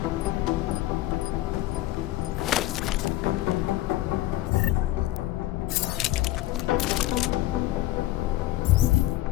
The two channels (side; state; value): right; quieter; 16.1 dB